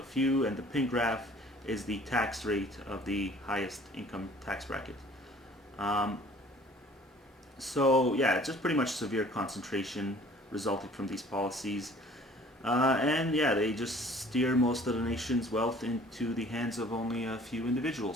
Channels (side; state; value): both; normal; correlation 0.52